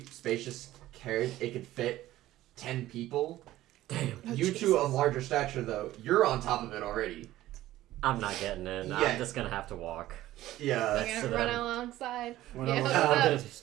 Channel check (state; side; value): quieter; left; 15.1 dB